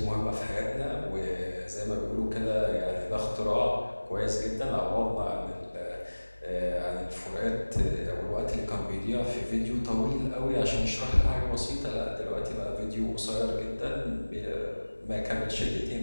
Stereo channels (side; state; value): both; inverted; correlation -1.00